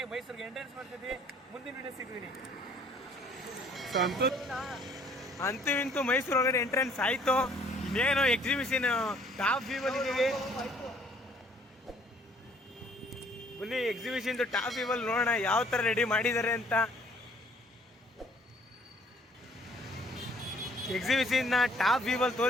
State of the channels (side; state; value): both; normal; correlation 0.60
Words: ಮೈಸೂರಿಗೆ ಎಂಟ್ರೆನ್ಸ್ ಮಾಡ್ತಿದ್ವಿ. ಮುಂದಿನ ವಿಡಿಯೋ ಸಿಗ್ತೀನಿ. ಅಂತೂ ಇಂತೂ ಮೈಸೂರು ಒಳಗಡೆ ಎಂಟ್ರೆನ್ಸ್ ಆಯ್ತು. ಇನ್ನೇನು ಎಕ್ಸಿಬಿಷನ್ ಟಾಪ್ ವ್ಯೂ ಬಂದಿದ್ದೀವಿ. ಬನ್ನಿ ಎಕ್ಸಿಬಿಷನ್ ಟಾಪ್ ವ್ಯೂ ಅಲ್ಲಿ ನೋಡೋಣ ಯಾವ ತರ ರೆಡಿ ಮಾಡಿದ್ದಾರೆ ಅಂತ. ಎಕ್ಸಿಬಿಷನ್ ಟಾಪ್ ವ್ಯೂ ಅಲ್ಲಿ